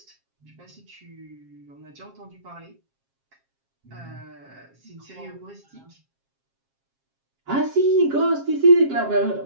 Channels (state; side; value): late; left; 7.4 ms